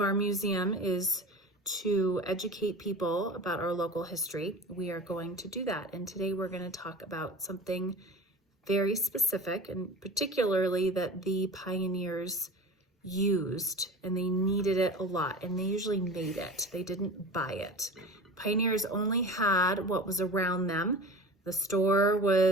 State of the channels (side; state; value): both; normal; correlation 0.35